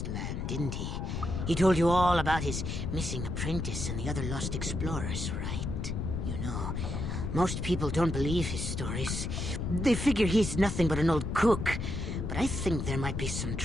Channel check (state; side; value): noise; left; rumble, 3 dB below the sound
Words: Land, didn't he? He told you all about his missing apprentice and the other lost explorers, right? You know, most people don't believe his stories. They figure he's nothing but an old cook. But I think there might be some